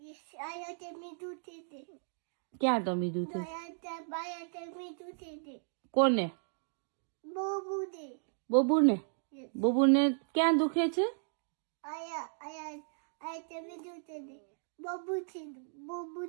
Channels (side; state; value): left; silent; digital silence